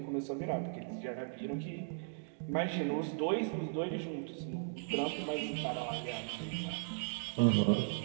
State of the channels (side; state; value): left; silent; digital silence